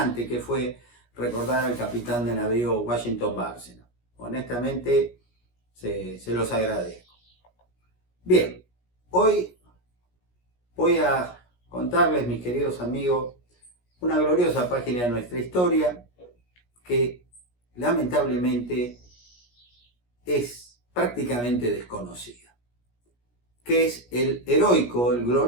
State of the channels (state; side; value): late; right; 17 ms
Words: que fue recordar al capitán de navío Washington Bárcena. Honestamente, se los agradezco. Bien, hoy voy a contarles, mis queridos amigos, una gloriosa página de nuestra historia que lamentablemente es prácticamente desconocida, que es el heroico, el